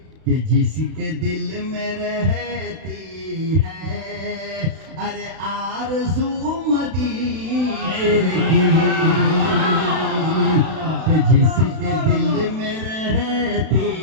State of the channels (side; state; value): left; late; 32 ms